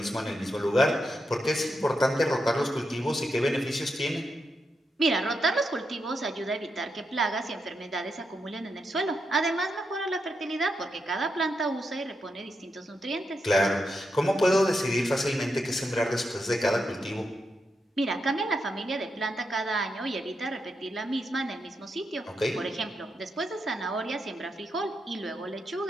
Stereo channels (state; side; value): normal; both; correlation 0.84